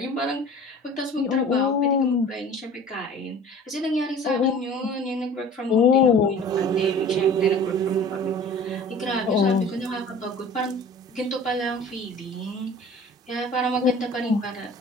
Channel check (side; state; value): both; normal; correlation 0.44